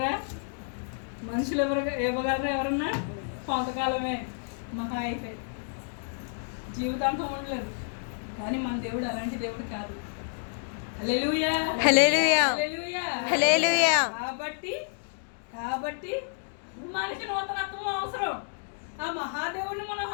మనుషులు ఇవ్వగలరా? ఎవరన్నా కొంతకాలమే, మహా అయితే జీవితాంతం ఉండలేదు. కానీ మన దేవుడు అలాంటి దేవుడు కాదు. హల్లెలూయా. కాబట్టి మనకి నూతనత్వం అవసరం. ఆ మహాదేవుడిని మనం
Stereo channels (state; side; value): silent; right; digital silence